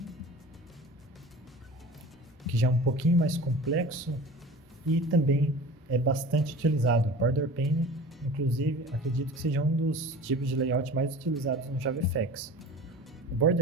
que já é um pouquinho mais complexo e também é bastante utilizado. Border Pane, inclusive, acredito que seja um dos tipos de layout mais utilizados no JavaFX. O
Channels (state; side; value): normal; both; correlation 0.38